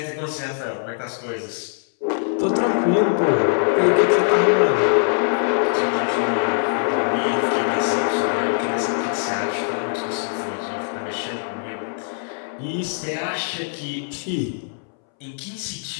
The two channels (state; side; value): silent; right; 64 dB below the other